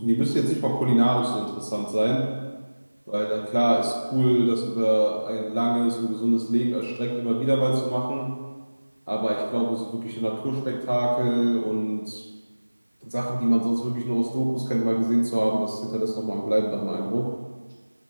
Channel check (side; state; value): both; inverted; correlation -1.00